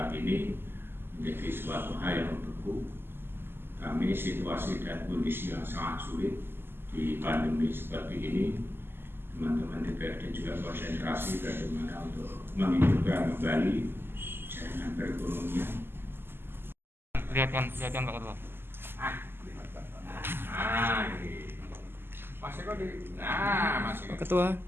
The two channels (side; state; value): left; late; 0.11 ms